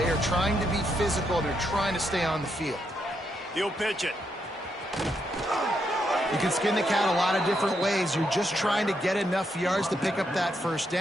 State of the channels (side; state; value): both; normal; correlation 0.79